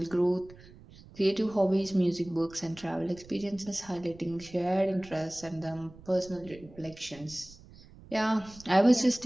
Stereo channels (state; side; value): noise; right; rumble, 21 dB below the sound